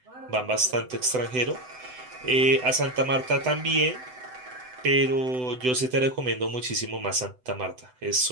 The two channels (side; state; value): left; late; 7.9 ms